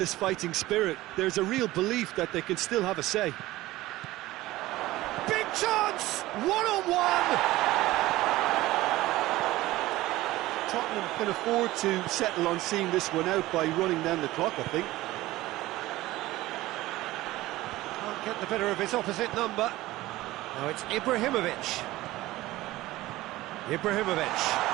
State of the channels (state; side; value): quieter; left; 17.4 dB